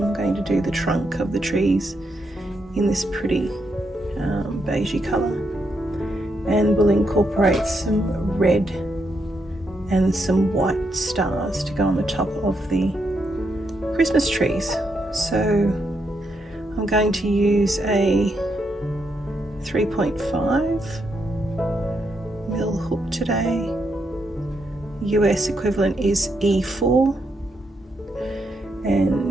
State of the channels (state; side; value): normal; both; correlation 0.80